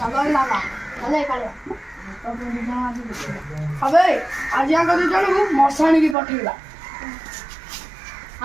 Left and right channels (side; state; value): left; drops out; at 6.2 s